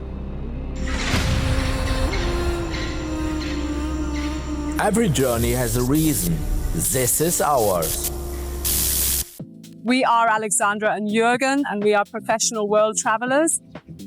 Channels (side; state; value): both; identical; correlation 1.00